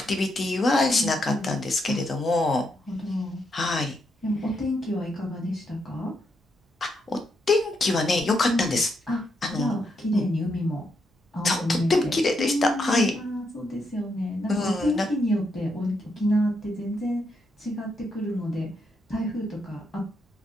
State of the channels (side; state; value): both; normal; correlation 0.80